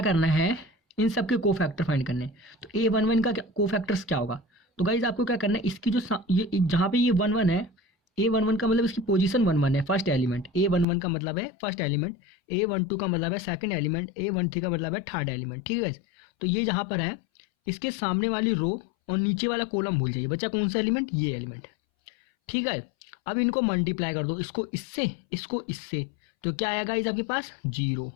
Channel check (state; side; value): drops out; right; at 10.9 s